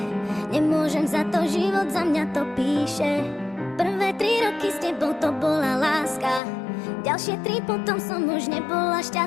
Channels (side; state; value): right; drops out; at 6.4 s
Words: nemôžem za to, život za mňa to píše. Prvé 3 roky s tebou to bola láska, ďalšie 3 potom som už nebola